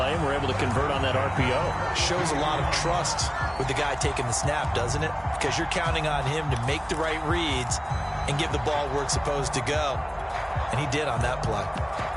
and were able to convert on that RPO. Shows a lot of trust with the guy taking the snap, doesn't it? Because you're counting on him to make the right reads and give the ball where it's supposed to go. And he did on that play.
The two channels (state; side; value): identical; both; correlation 1.00